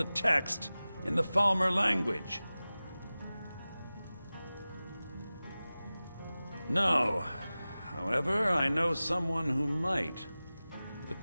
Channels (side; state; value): both; inverted; correlation -0.97